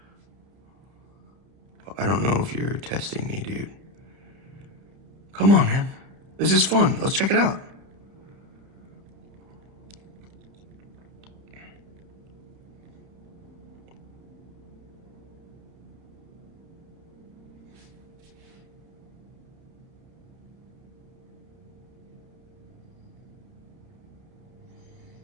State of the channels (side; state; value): left; late; 30 ms